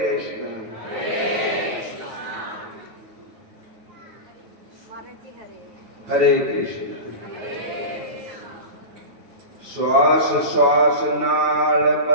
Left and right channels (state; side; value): late; left; 9.0 ms